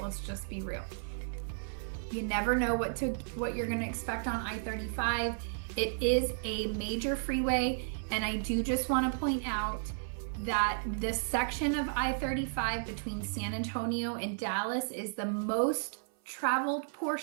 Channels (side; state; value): left; silent; 55 dB below the other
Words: just be real. You never know what you're going to expect on I-35. It is a major freeway, and I do just want to point out that this section of I-35 between San Antonio and Dallas is the most traveled